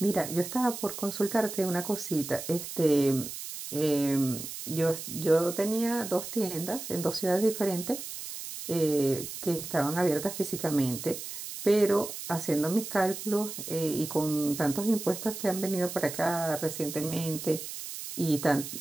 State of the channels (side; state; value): right; noise; hiss, 9 dB below the sound